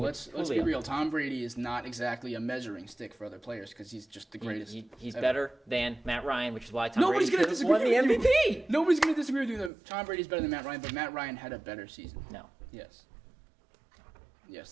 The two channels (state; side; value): drops out; left; at 9.7 s